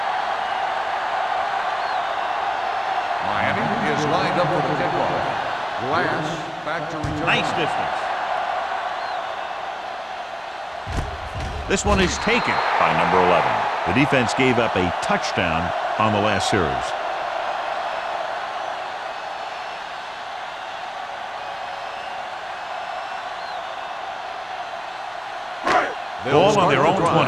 to return. Nice distance. This one is taken by number 11. The defense gave up a touchdown on the last series. Ball on their own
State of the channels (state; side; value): identical; both; correlation 1.00